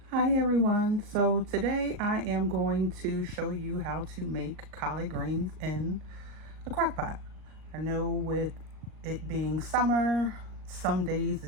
Hi everyone. So today I am going to show you how to make collard greens in a crock pot. I know with it being summer, some days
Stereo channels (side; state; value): left; late; 38 ms